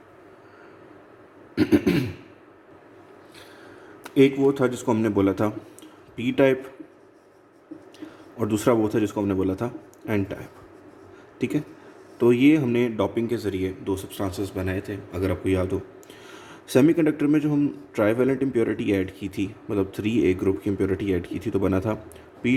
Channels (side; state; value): both; identical; correlation 1.00